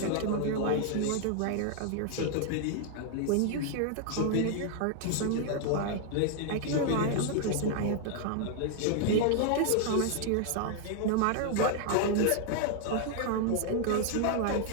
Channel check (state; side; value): different; both; correlation 0.00